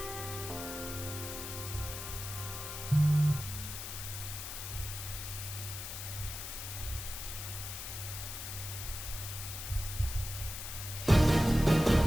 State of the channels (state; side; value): noise; left; hiss, 7 dB below the sound